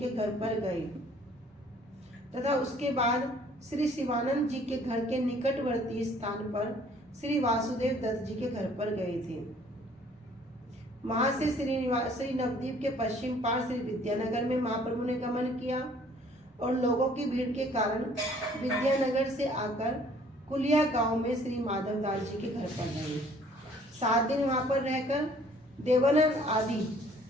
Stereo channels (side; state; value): both; normal; correlation 0.57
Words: घर पर गए तथा उसके बाद श्री शिवानंद जी के घर के निकटवर्ती स्थान पर श्री वासुदेव दत्त जी के घर पर गए थे। वहां से श्री नवद्वीप के पश्चिम पार श्री विद्यानगर में महाप्रभु ने गमन किया और लोगों की भीड़ के कारण विद्यानगर से आकर कुलिया गांव में श्री माधवदास जी के घर पर गए। 7 दिन वहां पर रहकर देवानंद आदि